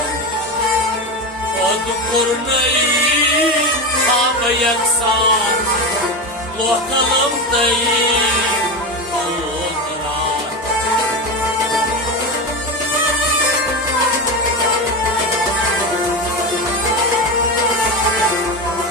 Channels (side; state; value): both; normal; correlation 0.19